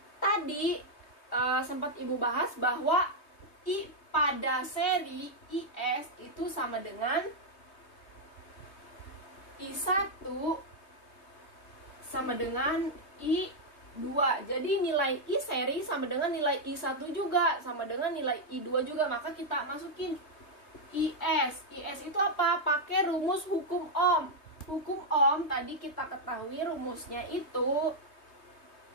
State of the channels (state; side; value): late; right; 3.2 ms